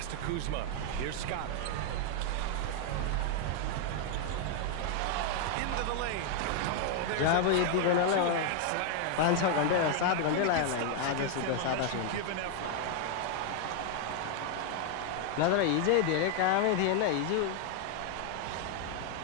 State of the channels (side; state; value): both; different; correlation 0.00